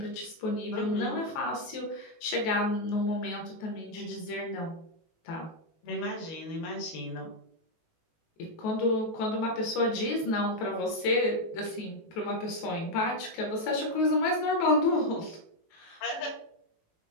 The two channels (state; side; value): late; right; 18 ms